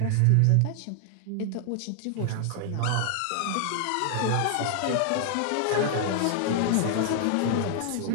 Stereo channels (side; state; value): both; different; correlation 0.00